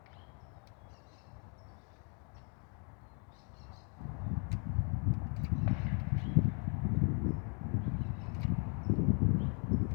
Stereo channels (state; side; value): quieter; right; 38.9 dB